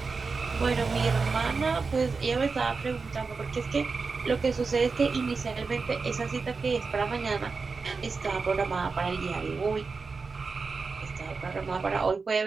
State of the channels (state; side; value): quieter; left; 4.5 dB